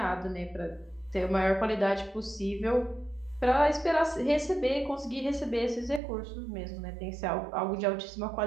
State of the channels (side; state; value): left; drops out; at 6.0 s